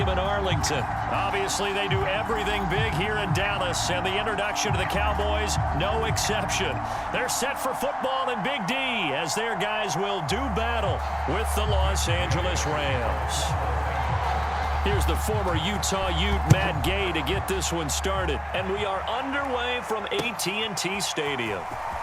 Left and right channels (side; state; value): both; identical; correlation 1.00